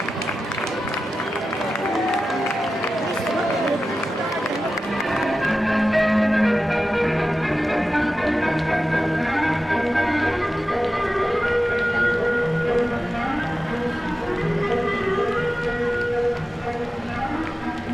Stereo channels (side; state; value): both; normal; correlation 0.93